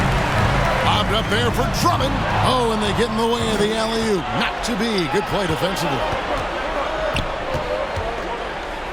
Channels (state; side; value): identical; both; correlation 1.00